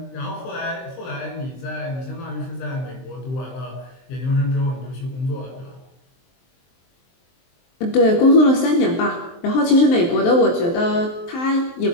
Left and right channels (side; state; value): right; late; 23 ms